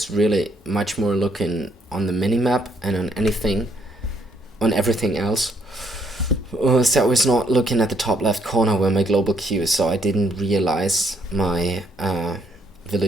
really much more looking on the minimap and on everything else. So I was not looking at the top left corner where my global queue is, so I didn't realize my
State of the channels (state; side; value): normal; both; correlation 0.70